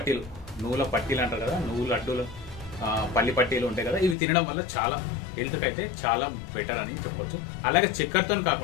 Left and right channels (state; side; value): drops out; right; at 4.2 s